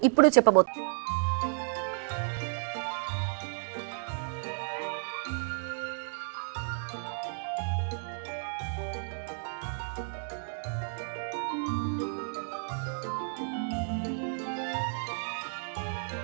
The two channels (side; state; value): left; silent; digital silence